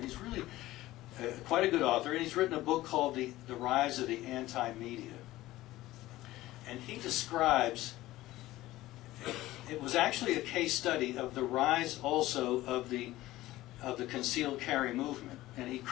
he's really quite a good author, and he's written a book called The Rise of the Anti-Media. And he describes, it was actually a case study of the rise also of the concealed carry movement. And he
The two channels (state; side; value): quieter; right; 16.7 dB